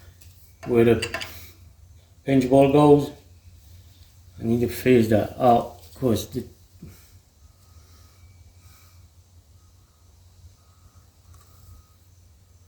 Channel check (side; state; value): both; identical; correlation 1.00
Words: where the pinch ball goes. I need to phase that out because it